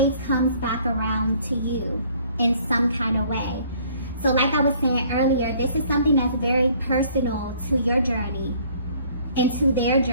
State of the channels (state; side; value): inverted; both; correlation -0.58